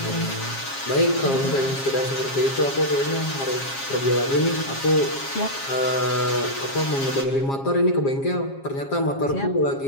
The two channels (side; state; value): right; late; 7.4 ms